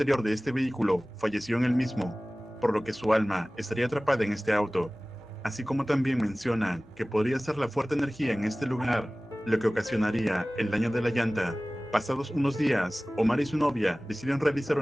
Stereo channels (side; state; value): both; normal; correlation 0.98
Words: de este vehículo falleció en el mismo, por lo que su alma estaría atrapada en este auto. Así como también mencionan que podría ser la fuerte energía en este lugar lo que ocasionaría el daño de la llanta. Pasados unos días, Omar y su novia deciden realizar